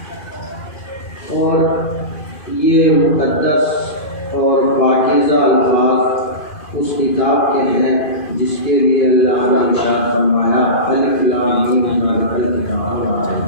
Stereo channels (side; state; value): right; late; 2.4 ms